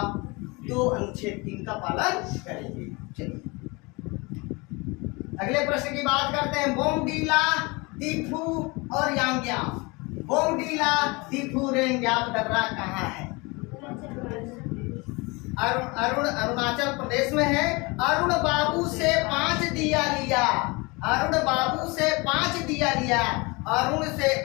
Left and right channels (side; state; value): right; quieter; 26.3 dB